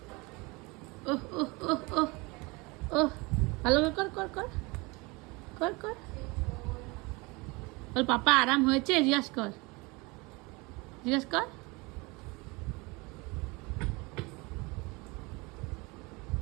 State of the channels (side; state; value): left; quieter; 25.9 dB